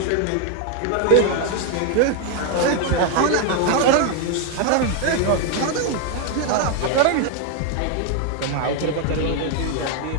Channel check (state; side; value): different; both; correlation 0.01